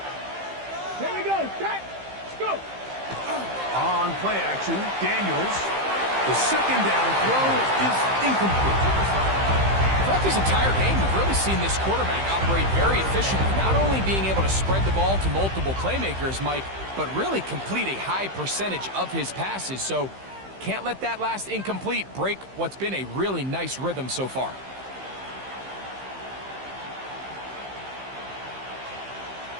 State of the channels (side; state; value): left; late; 15 ms